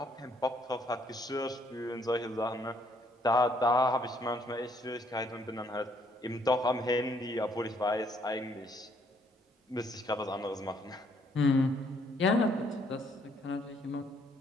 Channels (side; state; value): both; normal; correlation 0.67